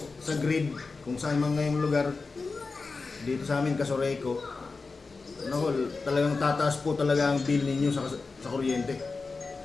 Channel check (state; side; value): quieter; right; 4.1 dB